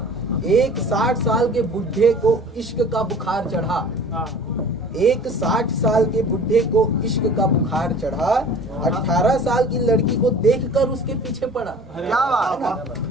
एक 60 साल के बुढ़े को इश्क का बुखार चढ़ा। एक 60 साल के बुढ़े को इश्क का बुखार चढ़ा। 18 साल की लड़की को देखकर उसके पीछे पड़ा। क्या बात है।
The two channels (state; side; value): normal; both; correlation 0.45